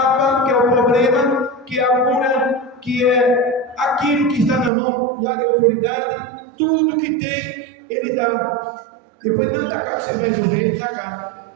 que é o problema, que é a cura, que é aquilo que está na mão e a autoridade, tudo que tem, ele dá. Depois não está cá, você vai resolver, está cá.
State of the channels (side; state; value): left; drops out; at 4.7 s